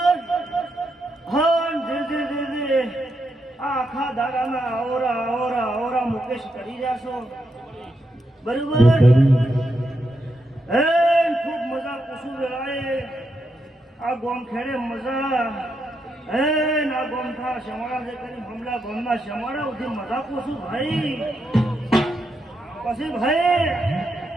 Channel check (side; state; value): both; normal; correlation 0.82